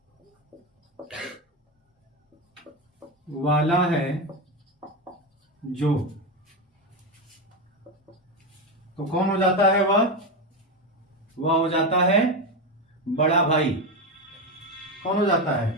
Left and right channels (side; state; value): both; normal; correlation 0.13